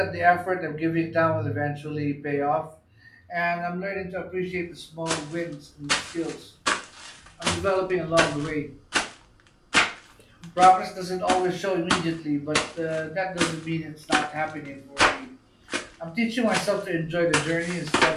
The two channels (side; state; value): both; identical; correlation 1.00